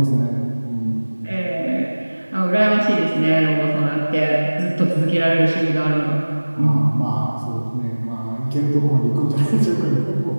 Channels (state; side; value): inverted; both; correlation -1.00